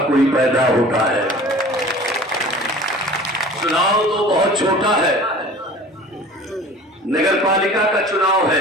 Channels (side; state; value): both; normal; correlation 0.43